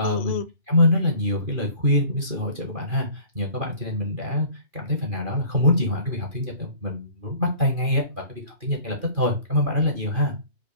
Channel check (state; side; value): late; left; 2.4 ms